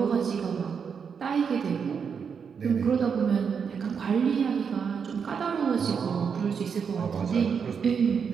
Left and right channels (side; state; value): left; quieter; 6.5 dB